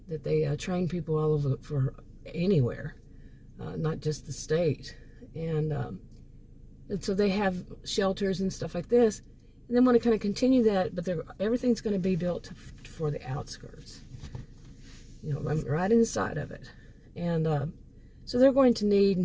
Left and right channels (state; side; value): identical; both; correlation 1.00